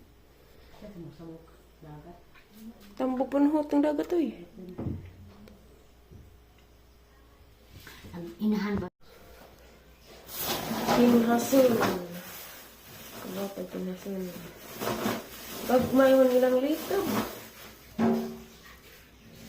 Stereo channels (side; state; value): both; identical; correlation 1.00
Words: Sa musawok dagat. Tambok pa ng hutang dagat to eh. Ang inahan ba? Pinhason. Ano pa pinhason? Pag may man ilang lito.